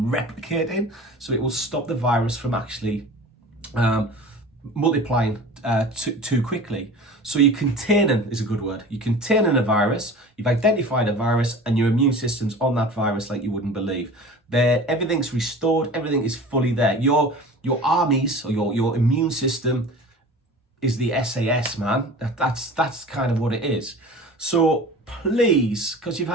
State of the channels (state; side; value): normal; both; correlation 0.39